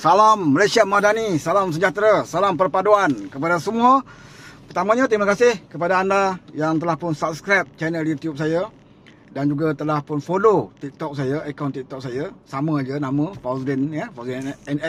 Malaysia Madani, salam sejahtera, salam perpaduan kepada semua. Pertamanya terima kasih kepada anda yang telah pun subscribe channel YouTube saya dan juga telah pun follow TikTok saya, akaun TikTok saya. Sama aja nama Fauzdin ya, Fauzdin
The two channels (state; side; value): identical; both; correlation 1.00